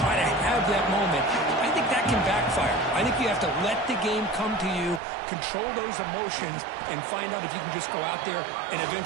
to have that moment, I think that can backfire. I think you have to let the game come to you, control those emotions, and find out if you can just go out there and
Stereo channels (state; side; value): drops out; left; at 5.0 s